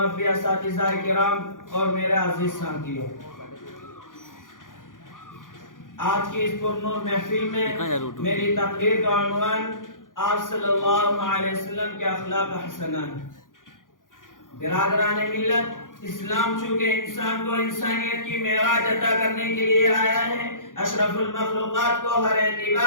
اساتذہ کرام اور میرے عزیز ساتھیوں، آج کی اس پرنور محفل میں میری تقریر کا عنوان آپ صلی اللہ علیہ وسلم کے اخلاق حسنہ ہے۔ برادران ملت، اسلام چونکہ انسان کو انسانیت کی معراج عطا کرنے کے لیے آیا ہے، اشرف المخلوقات کو ہر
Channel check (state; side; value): late; right; 0.89 ms